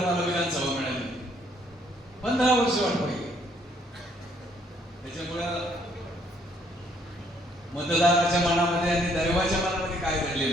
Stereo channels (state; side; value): normal; both; correlation 0.67